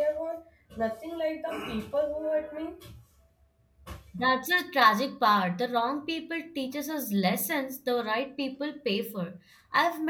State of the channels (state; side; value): identical; both; correlation 1.00